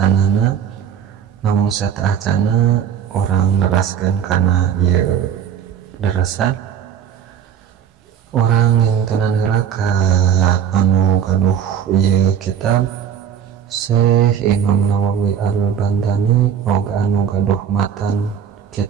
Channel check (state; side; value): quieter; left; 8.6 dB